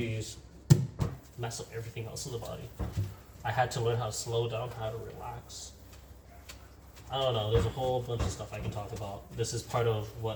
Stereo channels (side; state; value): both; identical; correlation 1.00